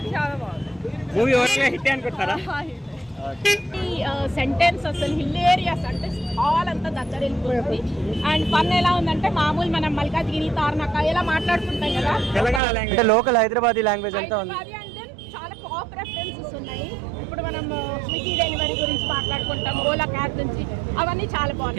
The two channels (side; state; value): left; drops out; at 12.6 s